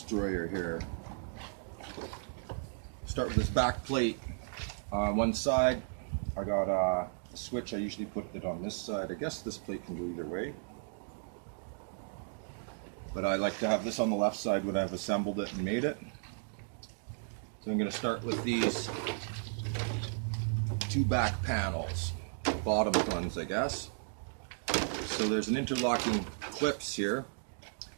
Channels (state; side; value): silent; left; digital silence